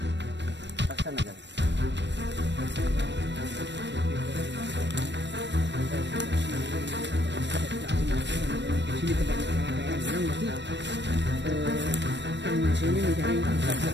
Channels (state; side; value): late; left; 0.52 ms